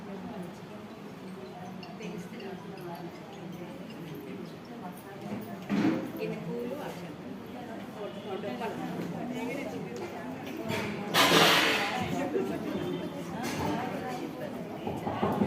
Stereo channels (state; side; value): identical; both; correlation 1.00